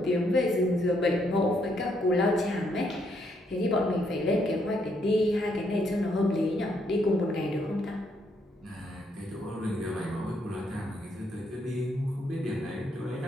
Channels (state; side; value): normal; both; correlation 0.73